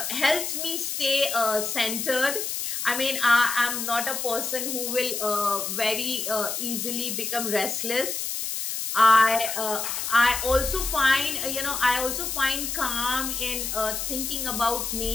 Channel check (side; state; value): left; noise; hiss, 3 dB below the sound